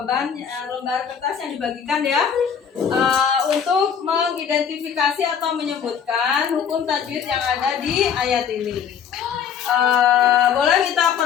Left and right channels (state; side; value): quieter; right; 7.7 dB